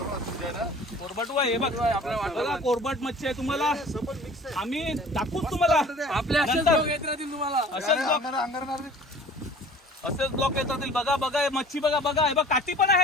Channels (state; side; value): normal; both; correlation 0.47